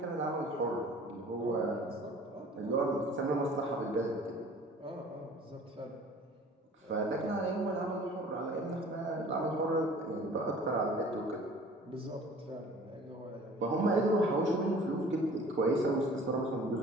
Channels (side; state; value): both; normal; correlation 0.47